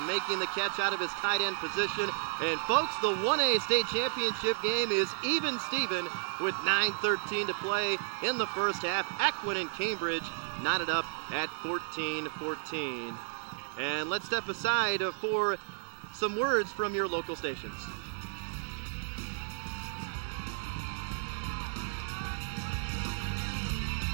making the catch out of his tight end position. And folks, the 1A state championship game is even Steven with 9:13 to play in the first half. Aquin and Cambridge knotted up at 14-14. And let's step aside for some words from your local stations.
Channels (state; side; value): silent; left; digital silence